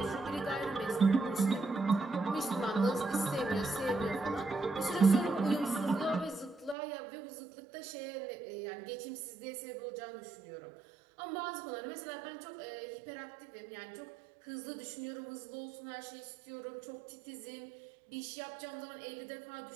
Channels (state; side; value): drops out; left; at 6.8 s